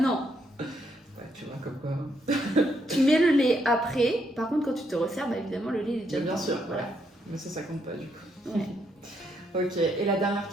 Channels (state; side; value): normal; both; correlation 0.76